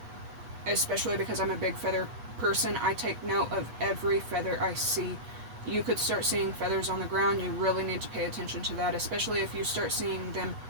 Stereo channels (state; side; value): late; left; 8.3 ms